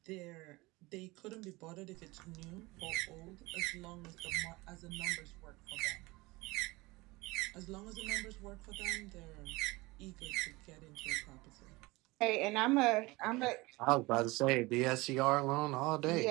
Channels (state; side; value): quieter; left; 22.2 dB